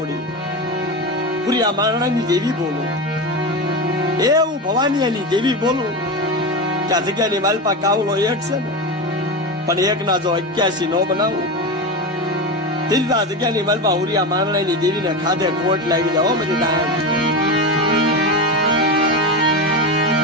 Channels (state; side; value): normal; both; correlation 0.19